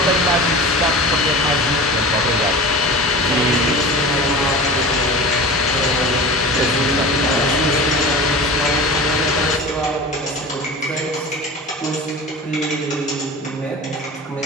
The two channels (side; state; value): both; normal; correlation 0.34